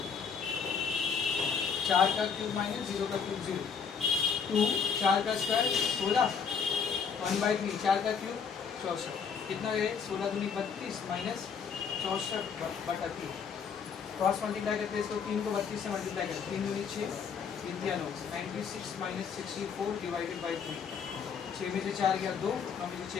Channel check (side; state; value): right; quieter; 6.4 dB